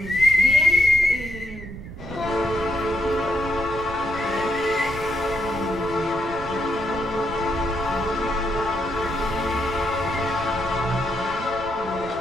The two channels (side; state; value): right; noise; rumble, 13 dB below the sound